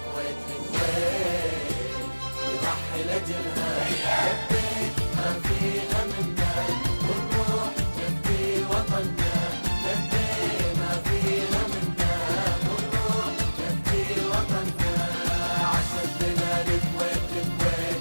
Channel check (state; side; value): inverted; both; correlation -1.00